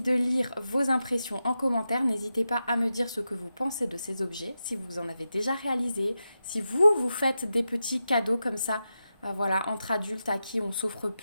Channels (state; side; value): inverted; both; correlation -0.90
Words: de lire vos impressions en commentaire. N'hésitez pas à me dire ce que vous pensez de ces objets, si vous en avez déjà réalisé, si vous faites des petits cadeaux comme ça, voilà, entre adultes à qui on s'offre